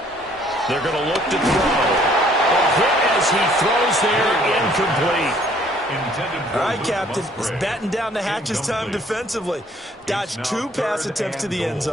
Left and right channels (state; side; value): normal; both; correlation 0.60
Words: They're going to look to throw. A hit as he throws there, incomplete. All right, Captain. It's batting down the hatches time defensively. Dodged 2 pass attempts to the end